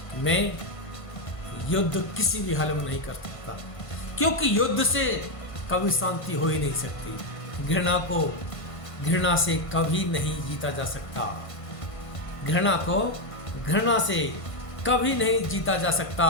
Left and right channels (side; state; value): right; late; 1.5 ms